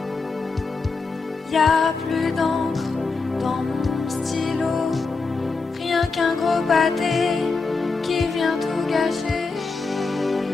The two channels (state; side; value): quieter; right; 4.2 dB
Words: Y a plus d'encre dans mon stylo, rien qu'un gros pâté qui vient tout gâcher.